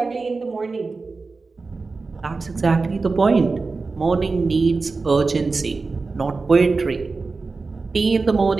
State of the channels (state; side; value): quieter; left; 4.0 dB